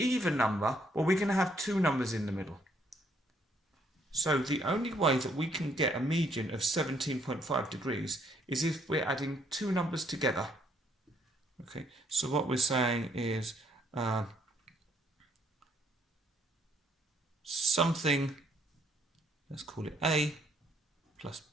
number, well, we're going to have 2 numbers in the middle. So the only way that we can get a median of 17.5 degrees is if we're adding 2 numbers together. Okay, so what we're saying is something, let's call it A plus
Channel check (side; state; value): both; normal; correlation 0.68